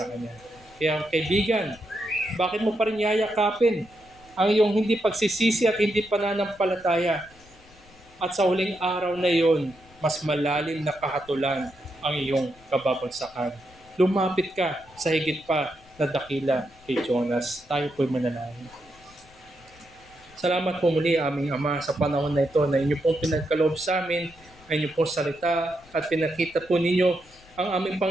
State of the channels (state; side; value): noise; left; rumble, 26 dB below the sound